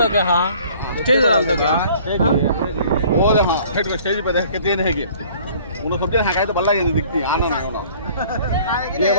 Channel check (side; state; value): both; inverted; correlation -0.53